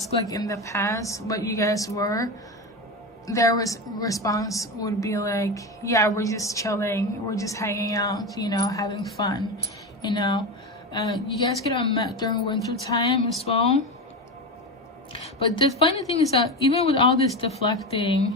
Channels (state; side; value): normal; both; correlation 0.20